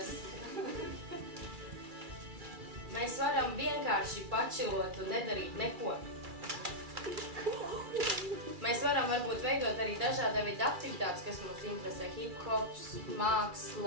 Mēs varam vienkārši pačilot un nedarīt neko. Mēs varam varbūt veidot arī dažāda veida aktivitātes, kas mums interesē. Hip-hops,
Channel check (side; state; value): left; late; 2.3 ms